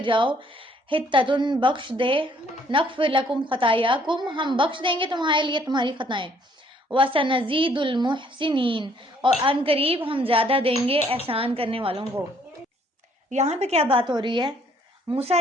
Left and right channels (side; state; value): both; normal; correlation 0.64